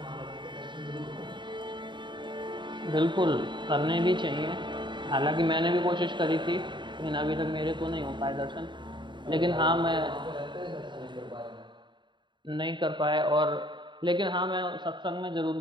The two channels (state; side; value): late; left; 0.23 ms